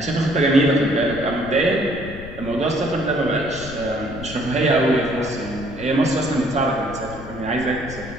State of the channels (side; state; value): left; noise; rumble, 13 dB below the sound